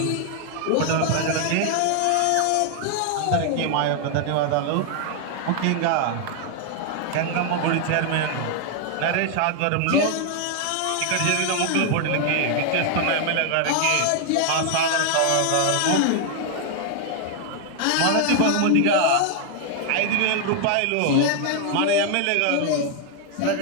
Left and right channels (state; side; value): different; both; correlation 0.00